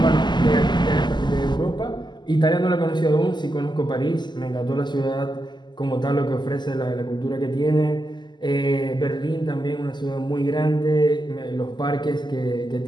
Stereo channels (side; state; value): right; late; 0.21 ms